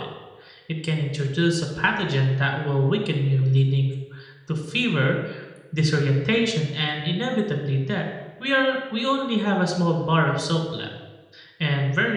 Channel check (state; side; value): identical; both; correlation 1.00